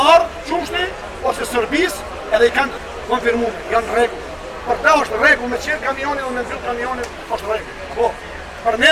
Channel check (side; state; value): both; identical; correlation 1.00